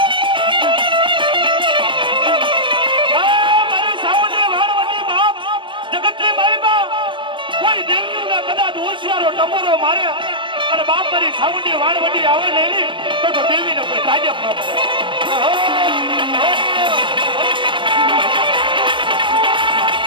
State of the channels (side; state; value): left; late; 0.24 ms